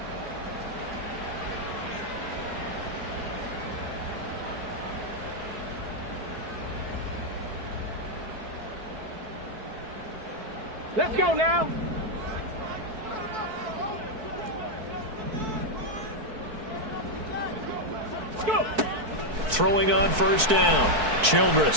Let's go now. Go. Throwing on first down.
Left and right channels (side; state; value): left; late; 4.6 ms